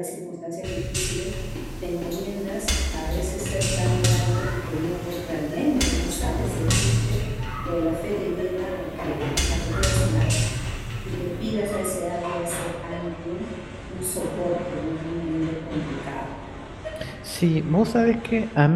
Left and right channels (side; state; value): both; identical; correlation 1.00